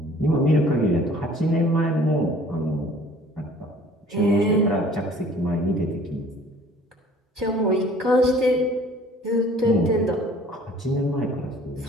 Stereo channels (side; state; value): both; normal; correlation 0.52